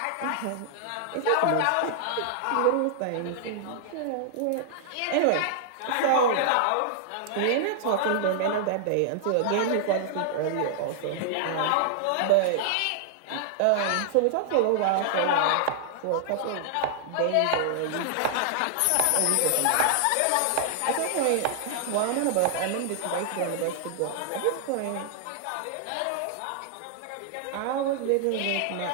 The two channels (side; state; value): both; different; correlation -0.01